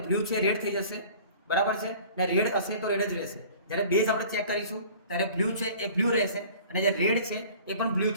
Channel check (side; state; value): both; inverted; correlation -0.46